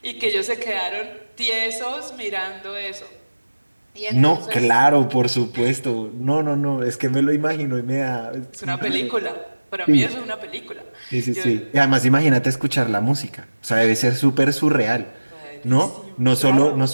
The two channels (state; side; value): inverted; both; correlation -1.00